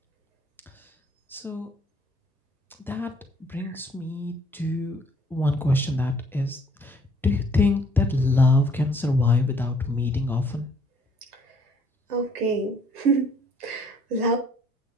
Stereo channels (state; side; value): normal; both; correlation 0.62